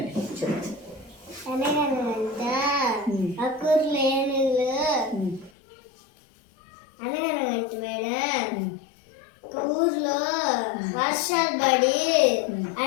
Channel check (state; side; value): drops out; right; at 5.5 s